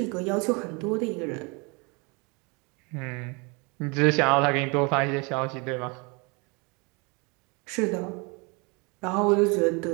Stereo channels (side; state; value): left; quieter; 30.1 dB